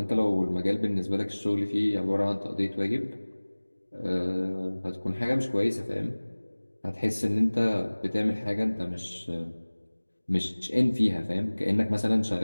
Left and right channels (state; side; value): inverted; both; correlation -1.00